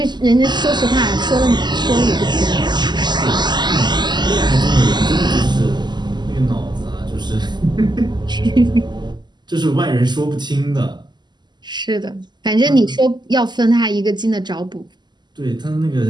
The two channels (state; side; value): late; left; 0.21 ms